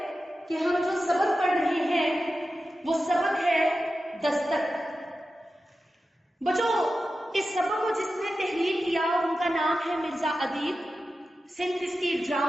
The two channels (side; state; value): both; normal; correlation 0.92